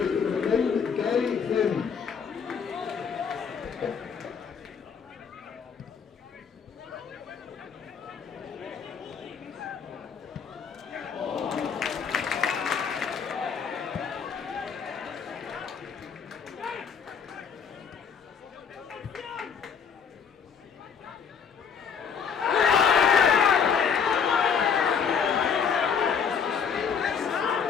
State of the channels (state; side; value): quieter; right; 6.7 dB